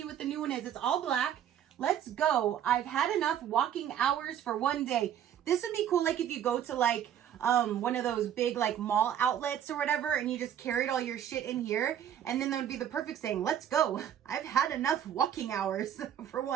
what the new one is. It's all black. Let's go. I've had enough walking hours for one day. This would be cool like if you go to like one of those big like mall outlets or whatever and you just carried all your shit in here, and then that would be the perfect saying, let's go. I've had enough walking hours for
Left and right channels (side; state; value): left; quieter; 9.9 dB